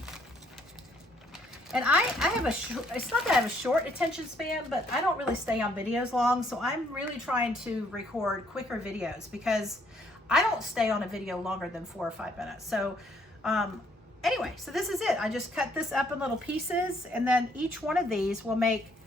And I have it's not that I have a short attention span, but I don't really stay on videos long, so I'm really trying to record quicker videos because I don't stay on a video longer than 4 or 5 minutes. So anyway, so this is it. I just cut this up in little pieces, and then each one of these will make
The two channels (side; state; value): both; normal; correlation 0.67